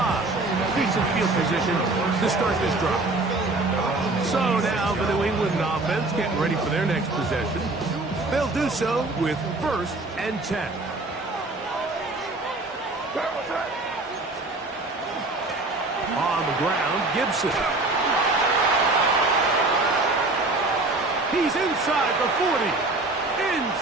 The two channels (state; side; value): quieter; left; 3.1 dB